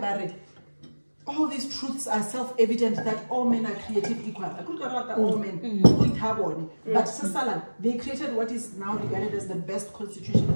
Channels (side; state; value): both; inverted; correlation -1.00